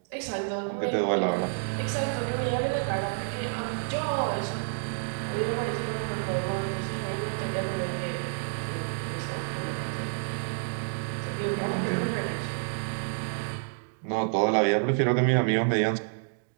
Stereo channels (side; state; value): left; silent; digital silence